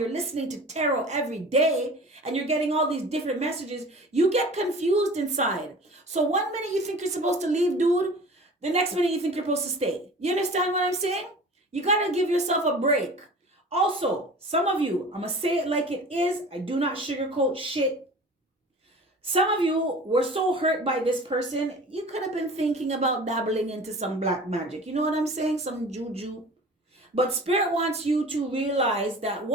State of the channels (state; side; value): normal; both; correlation 0.40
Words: listening to tarot every day and you're getting all these different messages, you get confused inside. So one minute you think you're supposed to leave, dude, the next minute you think you're supposed to stay. You understand what I'm saying? You gotta give yourself a break. Also, some of you, I'm gonna say it like it is. I do not sugarcoat shit. Some of you were so hurt by this person, you could have been thinking about dabbling into some black magic. You know what I'm saying? Some juju. But Spirit wants you to realize that